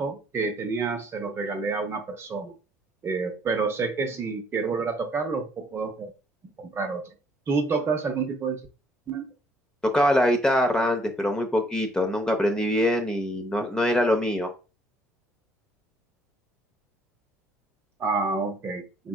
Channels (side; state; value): both; normal; correlation 0.65